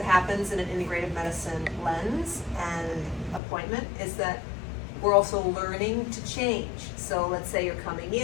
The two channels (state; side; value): drops out; right; at 3.4 s